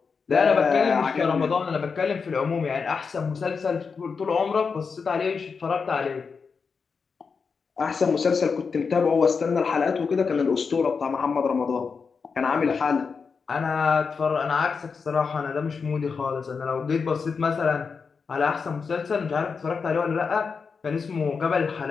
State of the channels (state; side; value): quieter; right; 5.3 dB